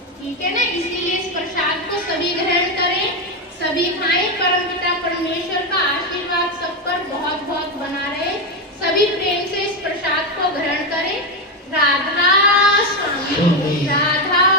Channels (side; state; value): both; normal; correlation 0.09